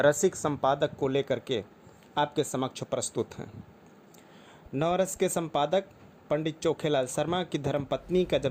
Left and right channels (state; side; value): identical; both; correlation 1.00